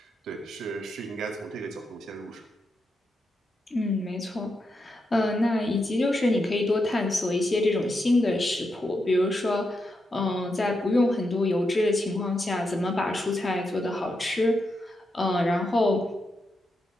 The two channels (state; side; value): normal; both; correlation 0.85